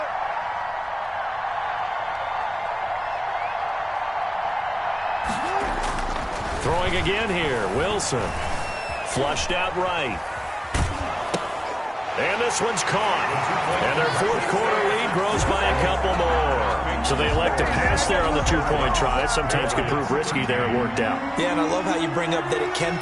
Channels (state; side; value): identical; both; correlation 1.00